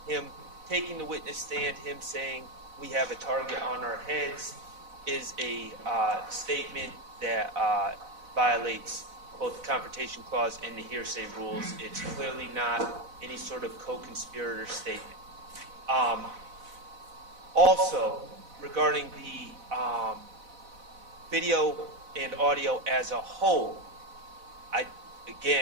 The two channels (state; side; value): late; left; 4.0 ms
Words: him taking the witness stand. Him saying we have a target on our heads is a statement that violates both the Confrontation Clause and the hearsay rules. It's clearly not any sort of co-conspirator statement. Also, regarding the video and audio as a whole, I